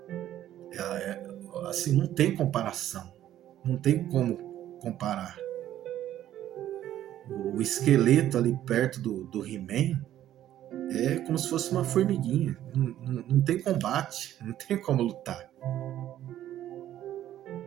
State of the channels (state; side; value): quieter; left; 12.2 dB